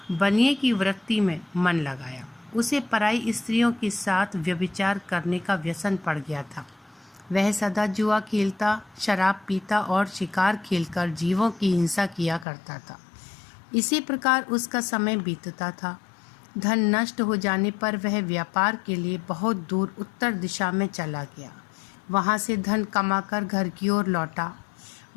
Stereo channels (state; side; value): drops out; right; at 12.5 s